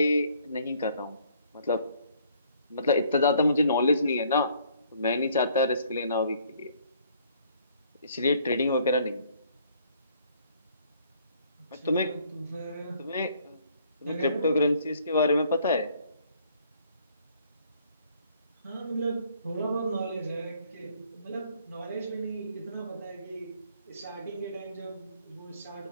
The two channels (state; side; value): inverted; both; correlation -0.62